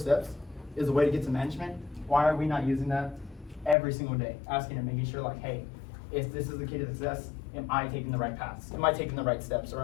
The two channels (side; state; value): right; drops out; at 3.8 s